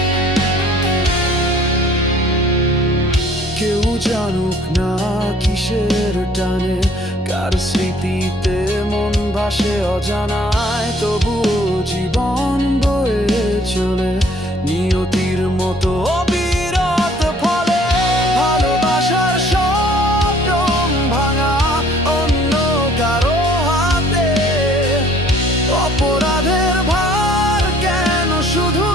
কেউ জানুক না কিসের টানে, কার স্মৃতিতে মন ভাসে অজানায়, তবুও জীবন বয়ে চলে নিয়তির মতো অবিরত ফলে। ভালোবাসার স্বপ্ন ভাঙা অন্য কারো হাতে, অপরাধের ভার কেন শুধু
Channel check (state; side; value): normal; both; correlation 0.57